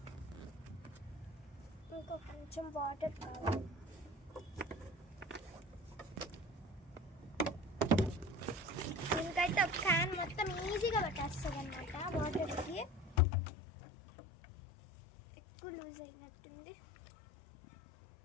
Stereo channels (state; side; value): drops out; right; at 13.2 s